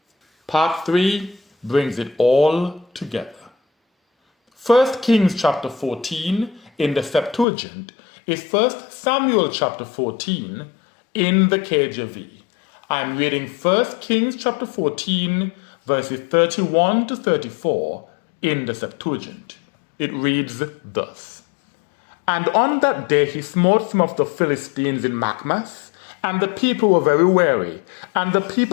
Part 3 brings it all together. 1 Kings chapter 14 in the Septuagint is 1 Samuel chapter 14 in the KJV. I'm reading 1 Kings chapter 14 verses 31 to 34 in the Septuagint. It reads thus: And on that day he smote some of the Philistines in Machmas, and the people were very weary, and the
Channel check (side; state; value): right; drops out; at 7.5 s